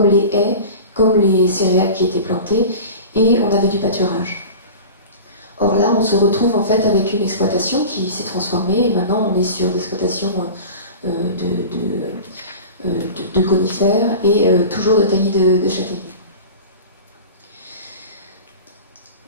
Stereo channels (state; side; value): inverted; both; correlation -0.35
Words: les haies, comme les céréales qui étaient plantées, et on avait du pâturage. Or là, on se retrouve en fait avec une exploitation qui s'est transformée, et maintenant on est sur l'exploitation de conifères et toujours de taillis de châtaigniers.